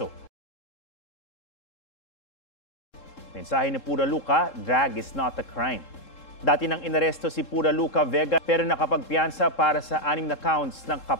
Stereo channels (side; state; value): right; late; 3.7 ms